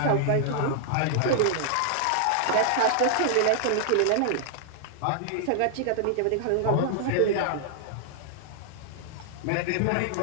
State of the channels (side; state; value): both; different; correlation -0.01